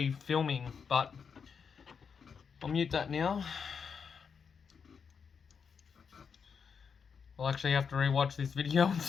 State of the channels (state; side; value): quieter; right; 6.3 dB